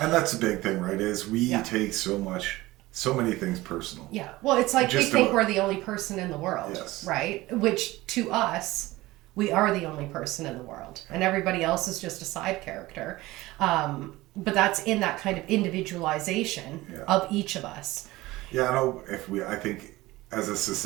that's a big thing, right? Is we take so many things personal. Yeah. Well, it's like we think we're the only person in the world, right? Which to us, we are the only person in the world, and everybody else is just a side character. But that's in that kind of individualization of each of us. Yeah, I think as a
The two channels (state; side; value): quieter; left; 18.9 dB